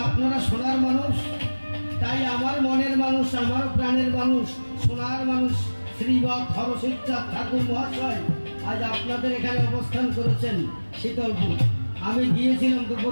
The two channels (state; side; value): inverted; both; correlation -1.00